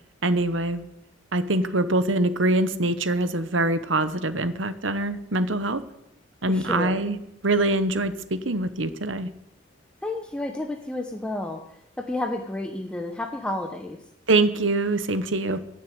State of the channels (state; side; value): normal; both; correlation 0.31